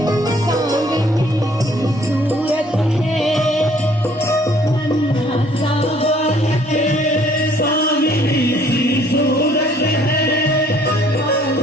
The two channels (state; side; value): normal; both; correlation 0.60